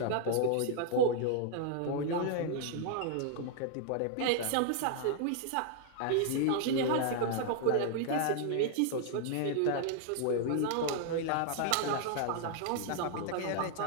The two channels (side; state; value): both; different; correlation -0.01